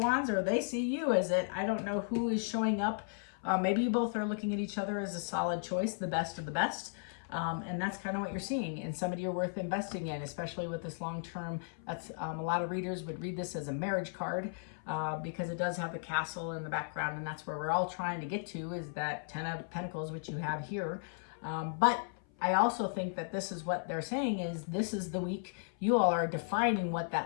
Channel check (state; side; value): silent; right; 54 dB below the other